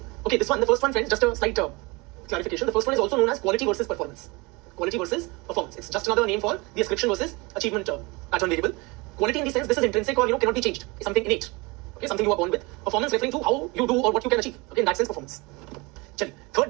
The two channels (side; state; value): left; quieter; 25.8 dB